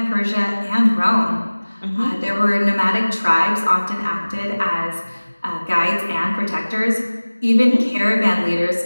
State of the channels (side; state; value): both; inverted; correlation -1.00